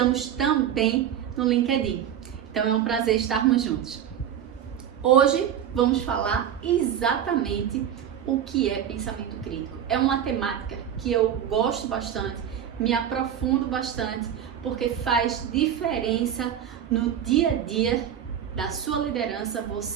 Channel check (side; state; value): left; quieter; 9.5 dB